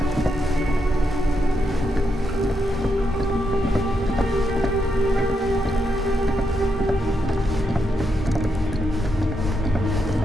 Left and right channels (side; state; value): both; normal; correlation 0.82